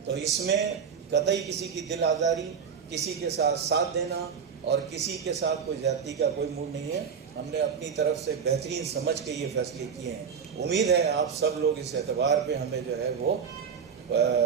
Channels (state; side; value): quieter; left; 6.7 dB